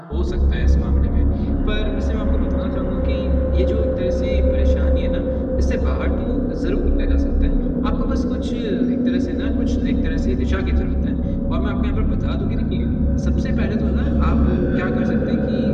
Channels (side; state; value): both; identical; correlation 1.00